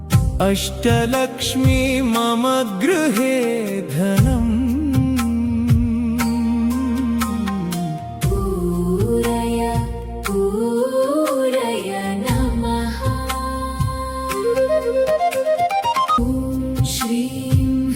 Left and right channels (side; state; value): both; identical; correlation 1.00